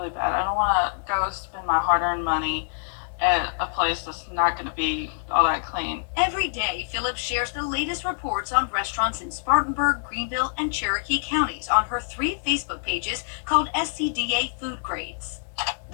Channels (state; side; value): silent; right; digital silence